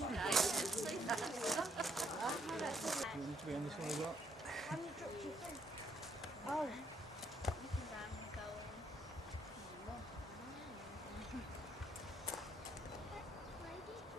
You need to be on this one as well. Oh.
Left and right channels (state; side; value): normal; both; correlation 0.72